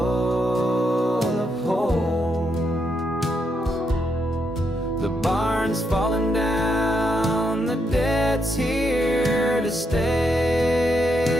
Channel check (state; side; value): normal; both; correlation 0.80